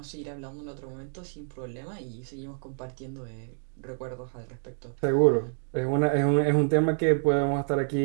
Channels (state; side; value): silent; left; 59 dB below the other